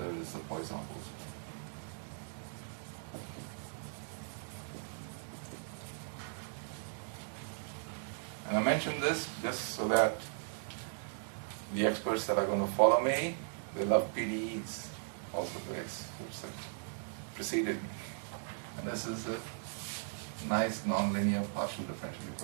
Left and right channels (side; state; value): left; silent; digital silence